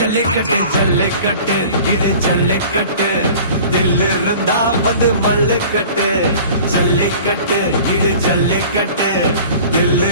ஜல்லிக்கட்டு இது ஜல்லிக்கட்டு தில்லு இருந்தா வந்து மல்லுக்கட்டு ஜல்லிக்கட்டு இது ஜல்லிக்கட்டு தில்லு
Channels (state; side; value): inverted; both; correlation -0.44